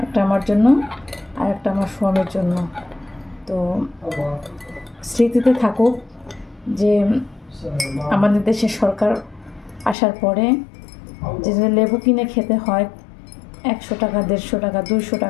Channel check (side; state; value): right; drops out; at 10.0 s